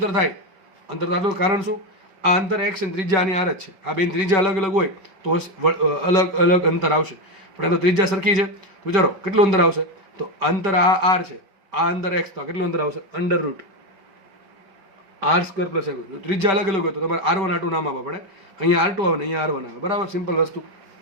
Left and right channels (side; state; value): left; late; 5.2 ms